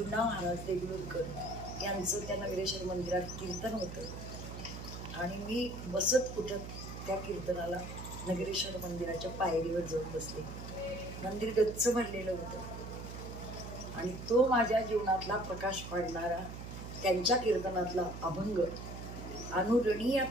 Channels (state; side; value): noise; right; hum, 9 dB below the sound